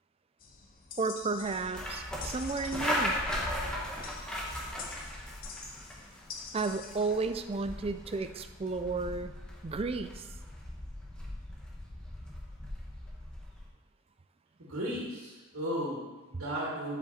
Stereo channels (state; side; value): normal; both; correlation 0.38